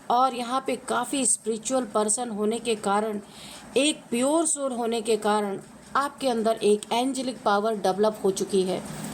और यहाँ पे काफ़ी स्पिरिचुअल पर्सन होने के कारण, एक प्योर सोल होने के कारण आपके अंदर एक एंजेलिक पावर डेवलप हो चुकी है,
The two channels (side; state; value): both; identical; correlation 1.00